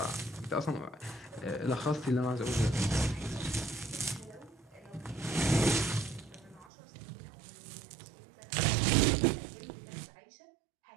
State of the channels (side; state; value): left; drops out; at 6.7 s